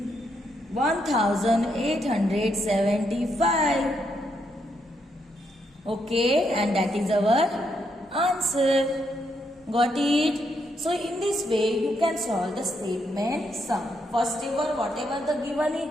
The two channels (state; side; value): normal; both; correlation 0.78